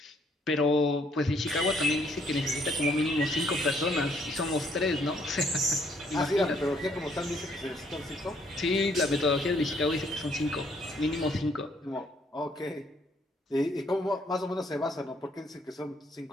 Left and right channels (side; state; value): both; normal; correlation 0.67